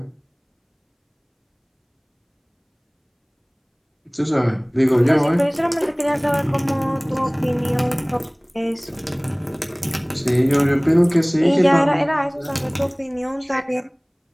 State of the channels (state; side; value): identical; both; correlation 1.00